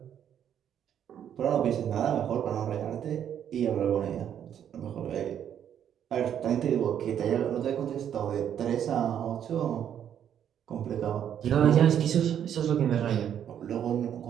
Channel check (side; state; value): left; quieter; 9.4 dB